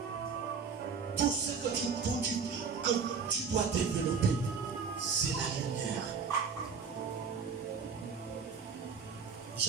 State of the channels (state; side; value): quieter; left; 5.8 dB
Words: Tout ce que tu dois développer, c'est la lumière.